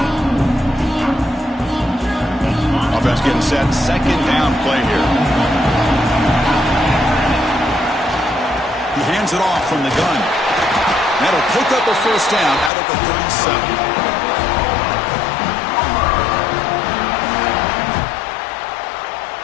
Offense getting set. Second down play here. He hands it off from the gun. That'll pick up a first down out of the 37.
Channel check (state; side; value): drops out; right; at 12.7 s